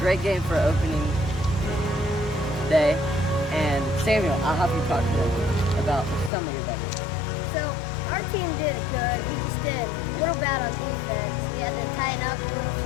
for opening day. And Samuel, I'll have you talk to them about some of your bet. So our team did good. We just did a little bad on defense. We had to tighten up a little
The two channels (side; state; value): right; drops out; at 6.3 s